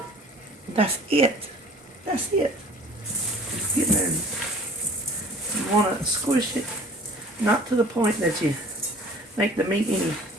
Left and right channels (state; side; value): normal; both; correlation 0.48